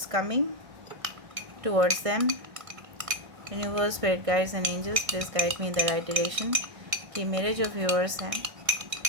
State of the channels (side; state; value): left; late; 1.5 ms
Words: coming towards them. Universe spirit guides and angels please guide me in the right direction. कि मेरे जो viewers हैं